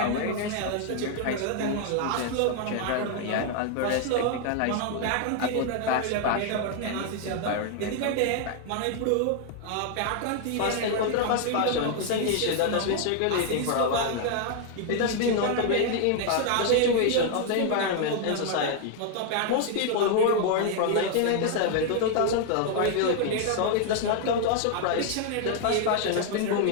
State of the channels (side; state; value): both; different; correlation 0.00